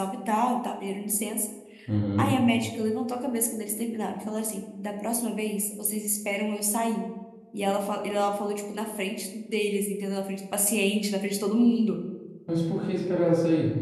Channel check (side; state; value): both; identical; correlation 1.00